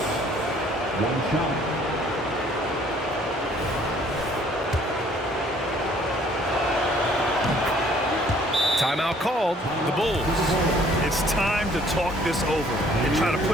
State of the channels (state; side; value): normal; both; correlation 0.59